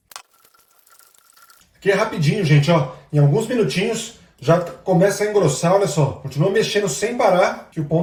Aqui é rapidinho, gente, ó. Em alguns minutinhos já começa a engrossar, olha só. Continua mexendo sem parar que o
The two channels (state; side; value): identical; both; correlation 1.00